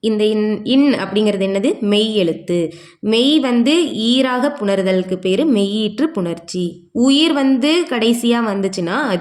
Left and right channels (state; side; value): identical; both; correlation 1.00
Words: இந்த இன் அப்படிங்கிறது என்னது? மெய் எழுத்து. மெய் வந்து ஈராக புணர்தலுக்கு பேர் மெய்யீற்று புணர்ச்சி. உயிர் வந்து கடைசியாக வந்துச்சுன்னா